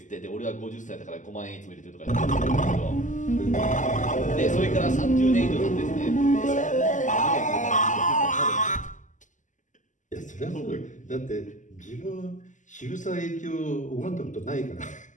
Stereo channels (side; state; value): right; late; 0.37 ms